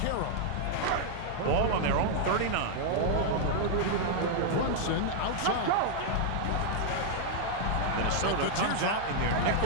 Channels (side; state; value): both; different; correlation 0.00